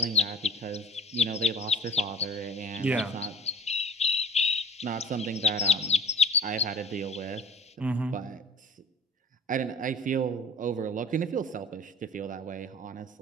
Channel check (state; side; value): normal; both; correlation 0.47